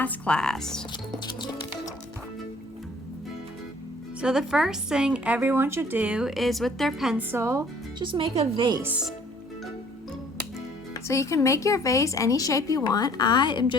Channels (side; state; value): both; normal; correlation 0.56